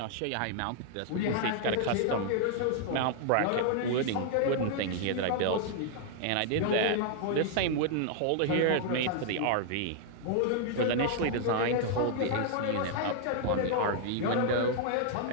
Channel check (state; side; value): different; both; correlation 0.00